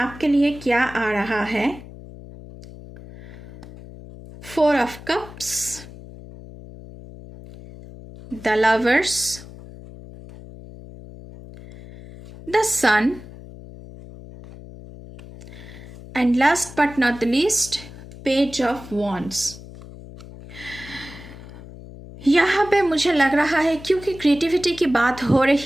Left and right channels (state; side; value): noise; left; hum, 16 dB below the sound